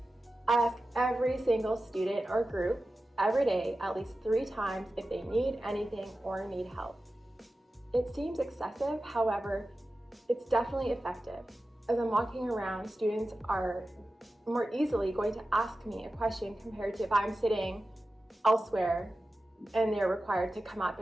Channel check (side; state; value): both; normal; correlation 0.94